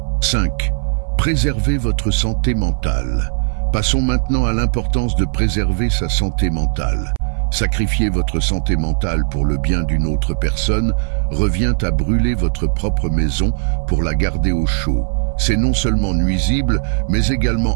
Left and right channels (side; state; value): left; silent; 62 dB below the other